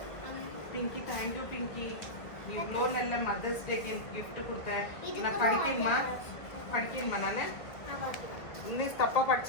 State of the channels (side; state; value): right; late; 1.9 ms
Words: பிங்கி தேங்க்யூ பிங்கி. நீ இவ்வளோ நல்ல மதர்ஸ் டேக்கு கிஃப்ட் கொடுத்த. நான் படிக்கணுமா நான் இன்னும் தப்பாக